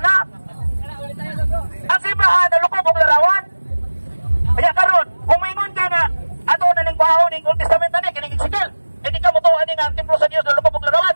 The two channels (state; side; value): inverted; both; correlation -1.00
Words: Ang simbahan dalakop og larawan. Kaya karon, kumingon ka nga ato na ning baho ning Old Testament ani kining Ezekiel. Hindi ka motuan ni nga ang templo sa Dios dalakop og larawan.